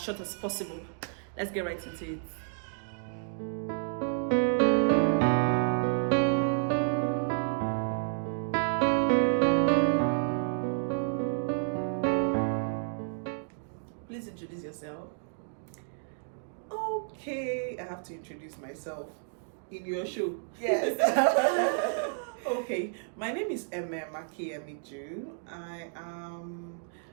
as possible. Let's get right into it. Please introduce yourself. Okay, I have to introduce myself in your show. Yes. Okay, my name is Makiemiju. I am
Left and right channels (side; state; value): left; silent; digital silence